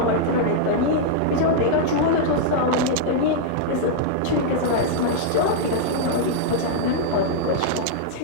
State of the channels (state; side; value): different; both; correlation -0.01